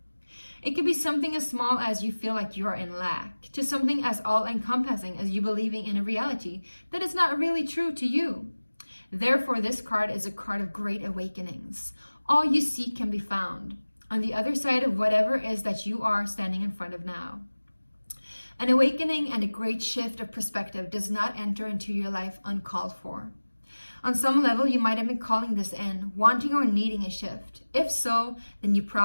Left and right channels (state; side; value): inverted; both; correlation -1.00